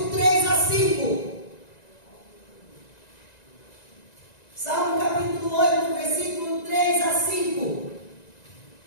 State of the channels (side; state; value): right; late; 1.9 ms